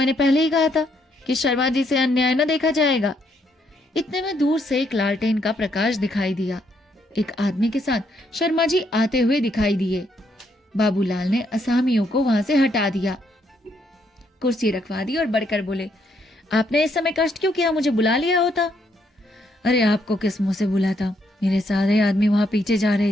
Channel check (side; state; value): both; normal; correlation 0.73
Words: पहले ही कहा था कि शर्मा जी से अन्याय न देखा जाएगा। इतने में दूर से एक लालटेन का प्रकाश दिखाई दिया। एक आदमी के साथ शर्मा जी आते हुए दिखाई दिए। बाबूलाल ने असामियों को वहां से हटा दिया, कुर्सी रखवा दी और बढ़कर बोले, आपने इस समय कष्ट क्यों किया? मुझे बुला लिया होता। अरे आपको किस मुंह से बुलाता? मेरे सारे आदमी वहां पीछे जा